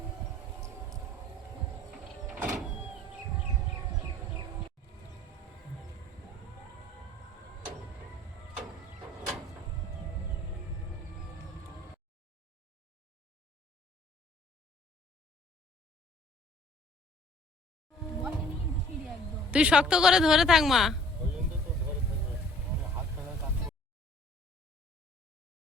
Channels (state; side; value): normal; both; correlation 0.54